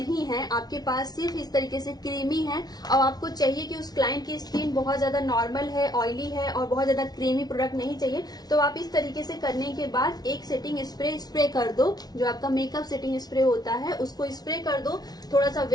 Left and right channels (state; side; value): late; right; 0.19 ms